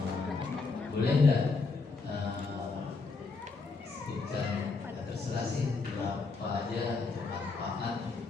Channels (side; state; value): right; quieter; 4.2 dB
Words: Boleh nggak sebutkan, terserah sih berapa aja untuk manfaat